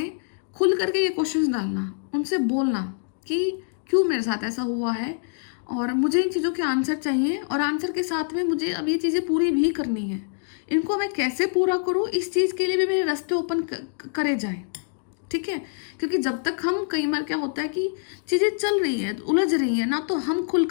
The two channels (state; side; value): silent; right; digital silence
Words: खुल करके ये क्वेश्चंस डालना, उनसे बोलना कि क्यों मेरे साथ ऐसा हुआ है और मुझे इन चीज़ों के आंसर चाहिए, और आंसर के साथ में मुझे अब ये चीज़ें पूरी भी करनी है। इनको मैं कैसे पूरा करूँ, इस चीज़ के लिए भी मेरे रास्ते ओपन करे जाएं, ठीक है। क्योंकि जब तक हम, कई बार क्या होता है कि चीज़ें चल रही हैं, उलझ रही हैं ना, तो हम खुल